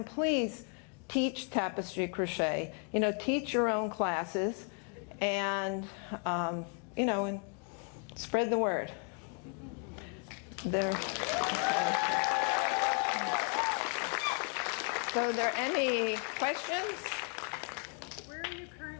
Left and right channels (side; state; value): right; quieter; 37.9 dB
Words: please teach tapestry crochet. Teach your own classes. And, and spread the word. So are there any questions?